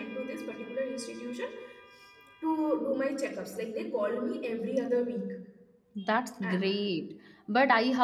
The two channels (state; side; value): identical; both; correlation 1.00